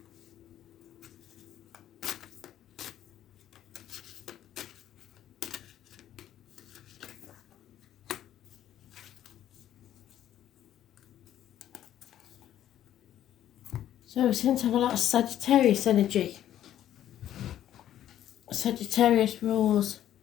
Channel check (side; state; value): right; quieter; 11.6 dB